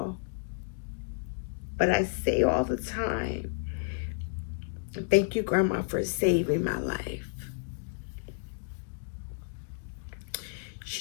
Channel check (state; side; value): silent; right; digital silence